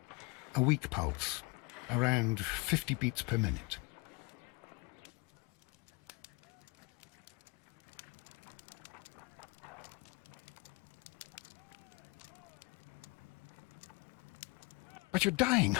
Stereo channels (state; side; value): quieter; right; 27.0 dB